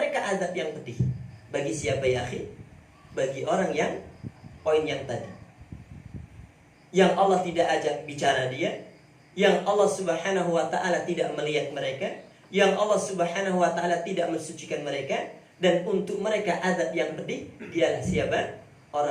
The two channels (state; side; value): identical; both; correlation 1.00